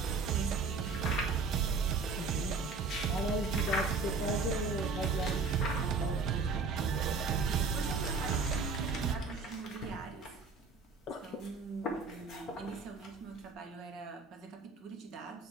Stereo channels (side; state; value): left; quieter; 4.3 dB